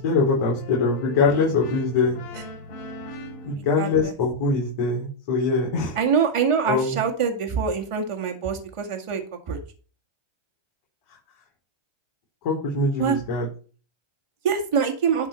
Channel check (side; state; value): left; late; 1.5 ms